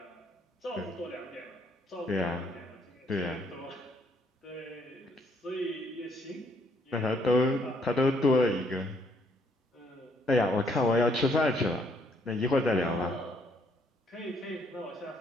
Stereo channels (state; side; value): normal; both; correlation 0.68